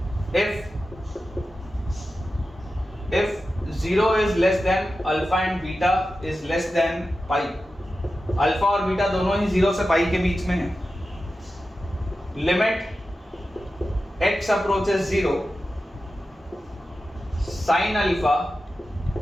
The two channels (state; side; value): normal; both; correlation 0.93